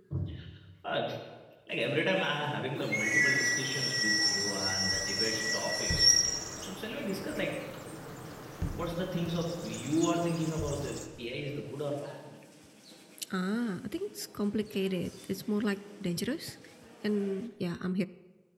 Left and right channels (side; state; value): both; identical; correlation 1.00